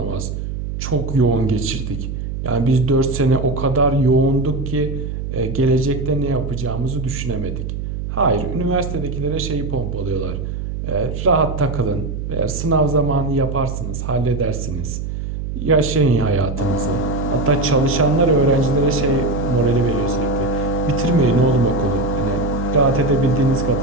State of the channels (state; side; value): noise; right; hum, 5 dB below the sound